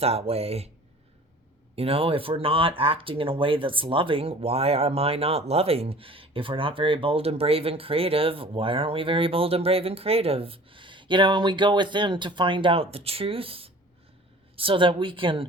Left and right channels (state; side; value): normal; both; correlation 0.45